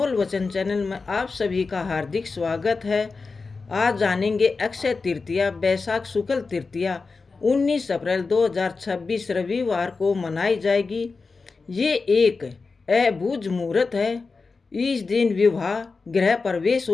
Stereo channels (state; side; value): quieter; right; 4.3 dB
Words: वचन चैनल में आप सभी का हार्दिक स्वागत है। आज जानेंगे अक्षय तृतीया, बैसाख शुक्ल तृतीया 19 अप्रैल 2026 रविवार को मनाई जाएगी। ये एक अबूझ मुहूर्त है। इस दिन विवाह, गृह प्रवेश